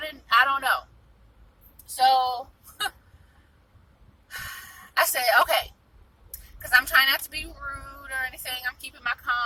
don't know. So, I said, okay, because I'm trying not to be rude or anything. I'm keeping my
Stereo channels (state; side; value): identical; both; correlation 1.00